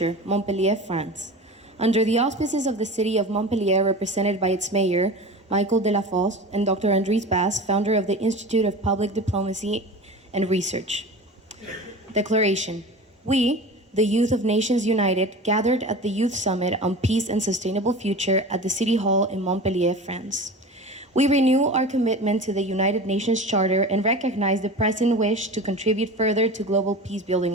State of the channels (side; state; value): both; normal; correlation 0.34